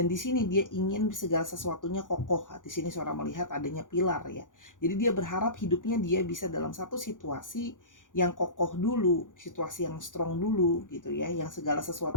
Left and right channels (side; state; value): right; late; 0.88 ms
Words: di sini dia ingin segala sesuatunya kokoh. Di sini Sora melihat adanya pilar ya. Jadi dia berharap hidupnya dia bisa dalam satu situasi yang kokoh dulu, situasi yang strong dulu gitu ya, yang segala